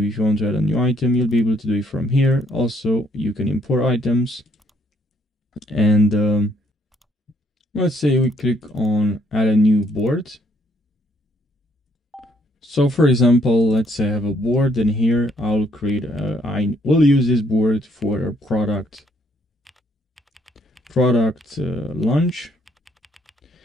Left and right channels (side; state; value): both; normal; correlation 0.68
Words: if you want to add a new item, you'll be able to do it from here. Also, you can import items. And let's say we click on add a new board. So for example, let's say I have a board, and here I'll create I will use this board for a product launch.